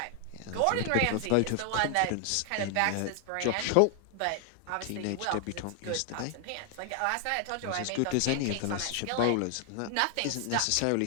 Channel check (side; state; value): both; different; correlation 0.00